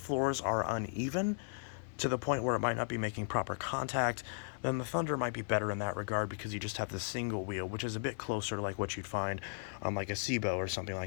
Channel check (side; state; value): right; silent; 54 dB below the other